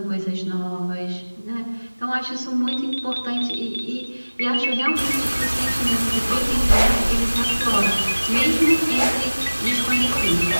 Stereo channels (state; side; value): inverted; both; correlation -1.00